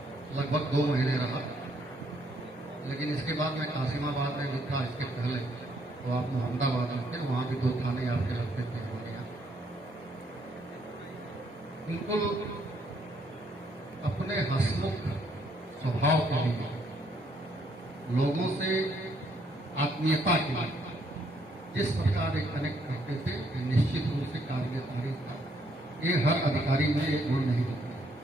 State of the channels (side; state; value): both; normal; correlation 0.70